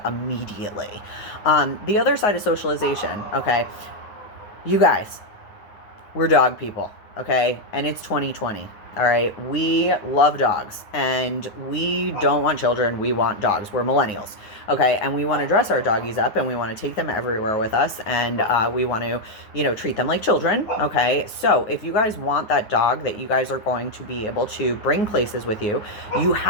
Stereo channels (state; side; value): late; right; 9.4 ms